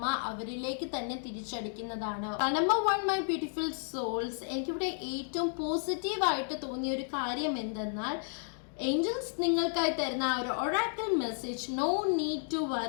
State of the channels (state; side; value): silent; right; digital silence